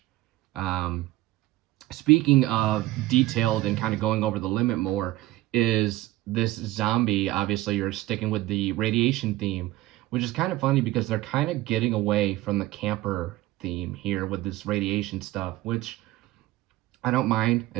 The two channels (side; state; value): left; quieter; 17.4 dB